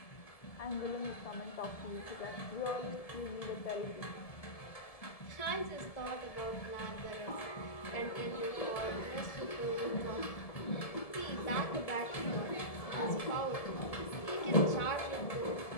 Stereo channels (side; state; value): right; late; 1.7 ms